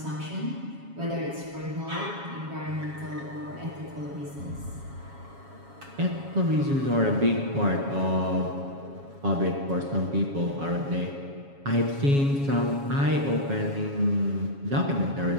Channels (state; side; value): late; left; 7.2 ms